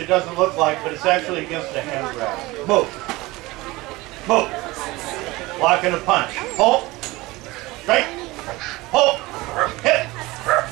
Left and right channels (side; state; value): left; quieter; 20.8 dB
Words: doesn't look like, but it's actually against a hand grab. Move. Move. Block and a punch. Pull. Straight. Pull. Hit.